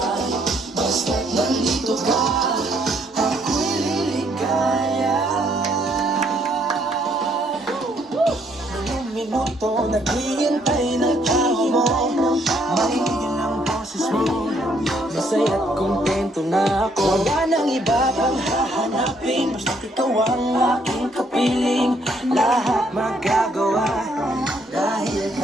Basta't nandito ka, ako'y liligaya. Ilang minuto naghihintay ng tao mo, makikigil ang boses mo. Masaya't kontento na ako, wala nang iba pang hahanapin. Basta't ikaw ang aking kapiling, lahat magagawa dahil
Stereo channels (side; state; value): both; normal; correlation 0.69